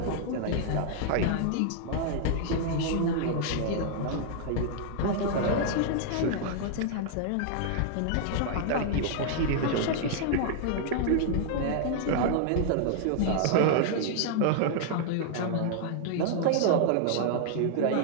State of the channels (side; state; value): both; different; correlation -0.01